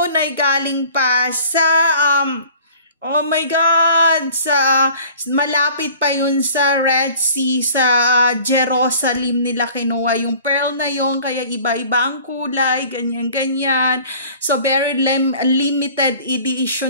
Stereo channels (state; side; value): inverted; both; correlation -0.48